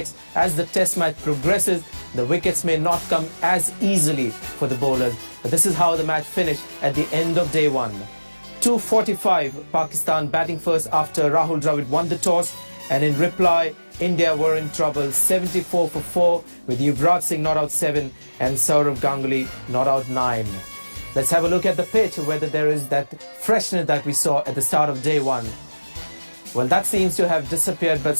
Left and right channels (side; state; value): both; inverted; correlation -1.00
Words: as the test match progresses, the wickets may not come as easily for the bowlers. But this is how the match finished at the end of day 1. 2:45, Pakistan batting first after Rahul Dravid won the toss, and in reply, India were in trouble, 74 for 4, with Yuvraj Singh not out 7 and Saurav Ganguly not out 9. Let's have a look at the pitch, whether there is that freshness that we saw at the start of day 1. Well, that seems to have disappeared, but